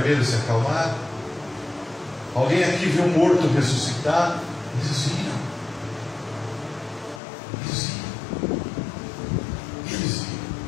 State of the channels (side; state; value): right; drops out; at 7.2 s